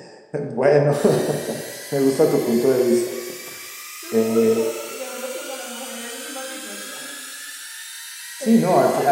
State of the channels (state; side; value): identical; both; correlation 1.00